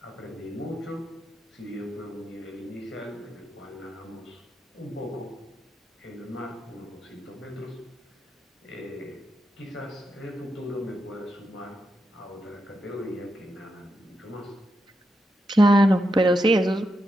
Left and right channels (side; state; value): both; normal; correlation 0.85